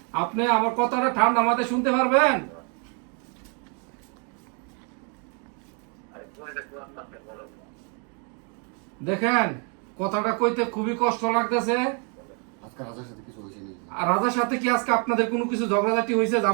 আপনি আমার কথাটা ঠান্ডা মাথায় শুনতে পারবেন? দেখেন, কথাটা কইতে খুবই কষ্ট লাগতেছে। আজকে রাজার সাথে কিছু হয়েছে নাকি? আর রাজার সাথে কি আজকে আপনাদের কোনো কিছু ঝগড়াঝাটি হয়েছে,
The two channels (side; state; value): left; quieter; 38.0 dB